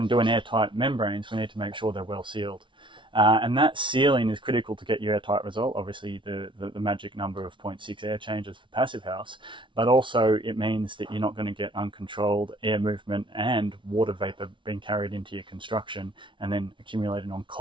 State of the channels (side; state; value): left; late; 0.24 ms